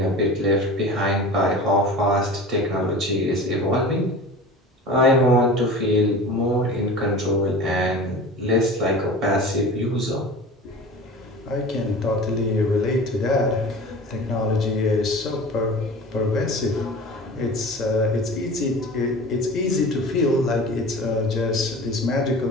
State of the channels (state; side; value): normal; both; correlation 0.36